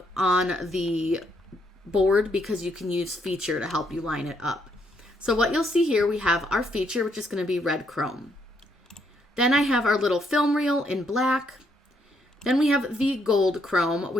on the board because you can use feature to help you line it up. So what you'll see here, we have our feature, which is going to be red chrome. Then I have our little film reel in black. Then we have the gold chrome,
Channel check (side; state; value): both; normal; correlation 0.73